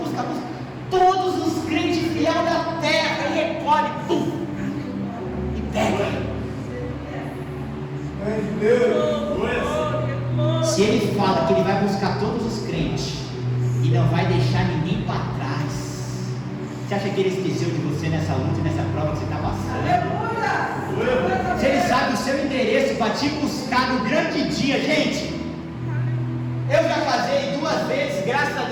Todos os crentes fiéis da terra, e recolhe, pum, e pega. Se ele fala que ele vai buscar todos os crentes e não vai deixar ninguém para trás, você acha que ele esqueceu de você nessa luta, nessa prova que você está passando? Se ele sabe o seu endereço para te buscar no grande dia, gente. Eu já casei 2 vezes, graças a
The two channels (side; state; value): both; identical; correlation 1.00